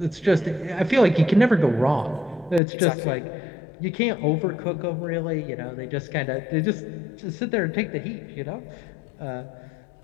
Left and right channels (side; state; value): right; drops out; at 2.6 s